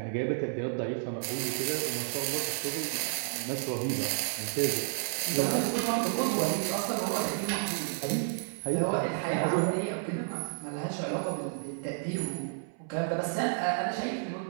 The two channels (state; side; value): silent; left; 57 dB below the other